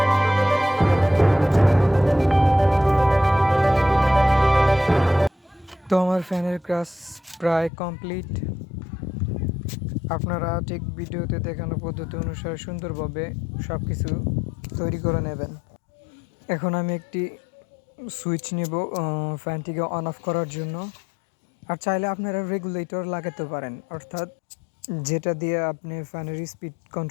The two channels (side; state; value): right; drops out; at 7.7 s